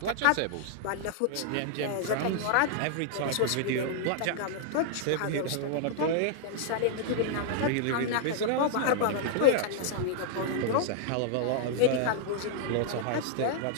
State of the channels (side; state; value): both; different; correlation -0.01